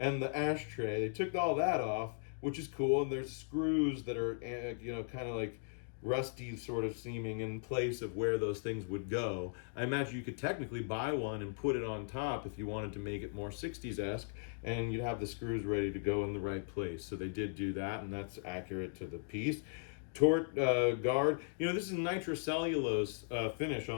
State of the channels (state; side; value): silent; right; digital silence